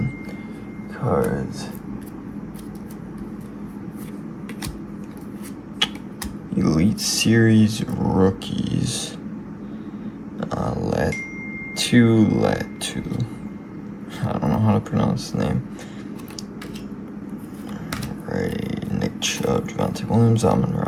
cards. Elite Series Rookies. Latu. I don't know how to pronounce the name. Alrighty, Nick Chubb, Javonte Williams,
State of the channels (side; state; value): both; identical; correlation 1.00